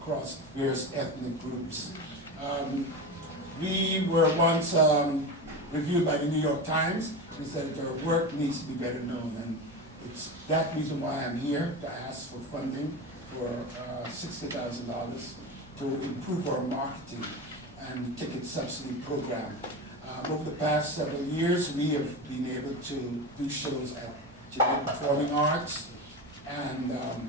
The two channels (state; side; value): normal; both; correlation 0.23